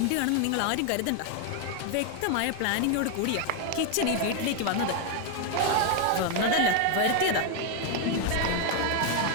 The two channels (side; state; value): both; different; correlation 0.01